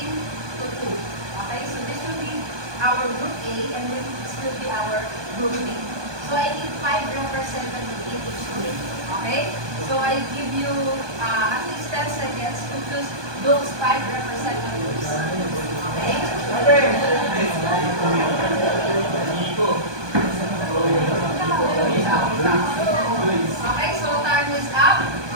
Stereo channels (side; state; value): left; late; 1.2 ms